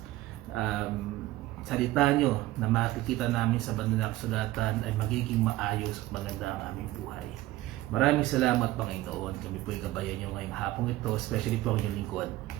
salita nyo na makikita namin sa banal na kasulatan, ay magiging maayos at maganda ang aming buhay. Maraming salamat, Panginoon. Kami po ay gabayan nyo ngayong hapong ito, especially po ang inyong lingkod,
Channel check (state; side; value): quieter; left; 16.8 dB